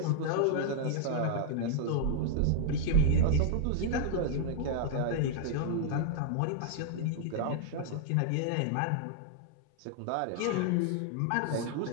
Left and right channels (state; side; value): different; both; correlation -0.01